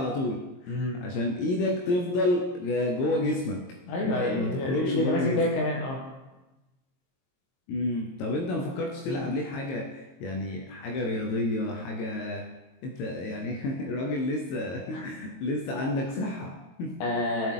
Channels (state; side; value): late; right; 22 ms